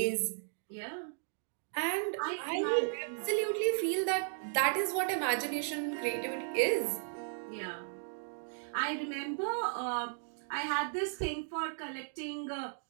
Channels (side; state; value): left; silent; digital silence